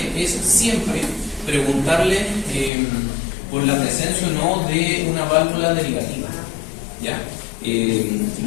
es siempre preguntarle por la presencia o no de una válvula derivativa, ¿ya?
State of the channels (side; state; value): right; drops out; at 2.7 s